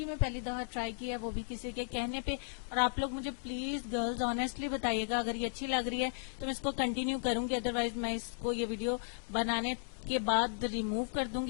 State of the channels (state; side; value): silent; right; digital silence